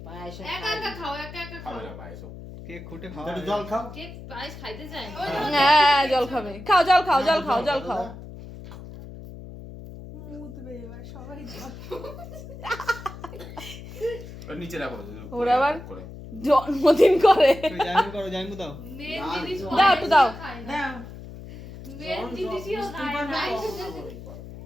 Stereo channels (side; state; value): left; noise; hum, 13 dB below the sound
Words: পায়েস একা একা খাও একা একা খাও খাবে না পায়েসো একটু জল খাও কেক পায়েস খাইতে চায় না হ্যাঁ জল খাবে খাও জল খাও জল খাও জল খাও ওর নিচে রাখো ওরা আবার করে জন্মদিন করে মেন জিনিস দাও একটু দাও খায় না দাও মেন জিনিসও খায় না